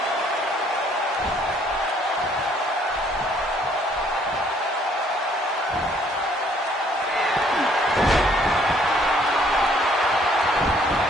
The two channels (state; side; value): normal; both; correlation 0.63